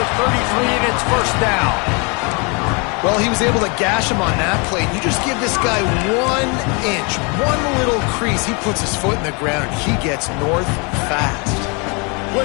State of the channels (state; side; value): quieter; right; 31.9 dB